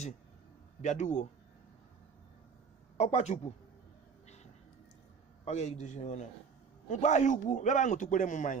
bịa duwo ọkwa Chukwu, ọ ga-eduzi ọnụ nkwa ahịa ukwu bịaba ṅụtụkpere m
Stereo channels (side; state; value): left; quieter; 5.9 dB